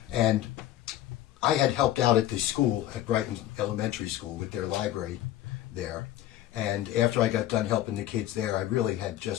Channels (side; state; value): right; quieter; 13.3 dB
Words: And I had helped out at the school, at Brighton Elementary School, with their library there. And after I got done helping the kids there, I really had